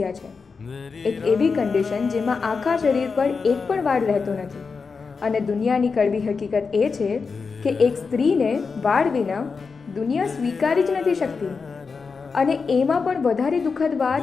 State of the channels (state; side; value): quieter; right; 5.0 dB